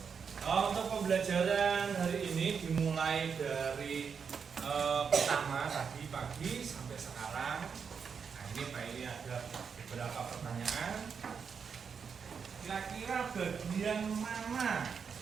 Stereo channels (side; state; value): left; quieter; 6.3 dB